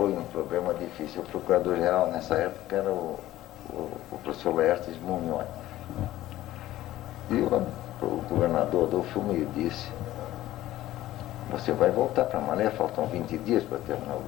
um problema difícil. O procurador-geral nessa época era o professor Laertes Munhoz. E o governador Adolfo me disse, você vai voltar para Malé, faltam 20 dias para terminar o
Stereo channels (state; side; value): quieter; right; 14.9 dB